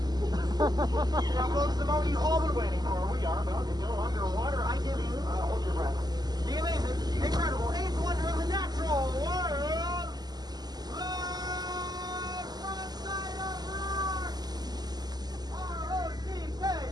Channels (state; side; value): late; left; 0.20 ms